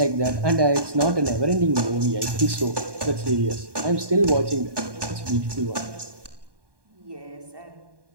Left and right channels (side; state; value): left; late; 1.2 ms